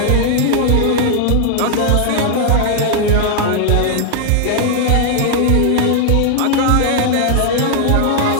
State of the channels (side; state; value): both; different; correlation 0.00